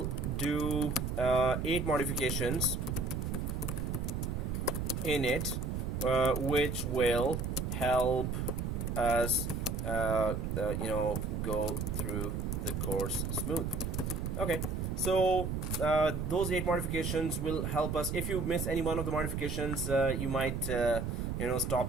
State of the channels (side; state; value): right; noise; rumble, 2 dB below the sound